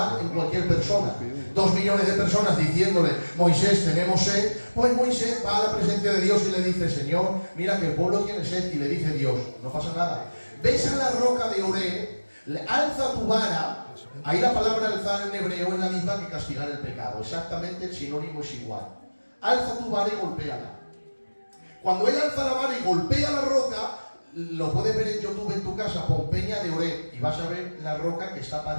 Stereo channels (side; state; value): both; inverted; correlation -1.00